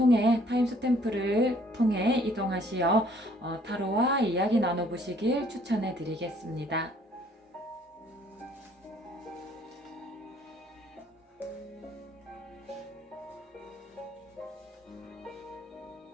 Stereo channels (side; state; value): both; normal; correlation 0.61